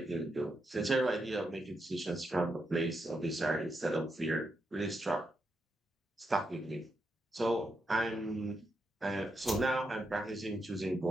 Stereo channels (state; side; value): normal; both; correlation 0.83